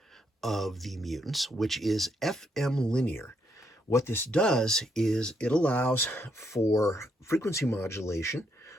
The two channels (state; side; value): normal; both; correlation 0.76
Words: of the Mutants, which is FM linear. What this does is it allows for frequency modulation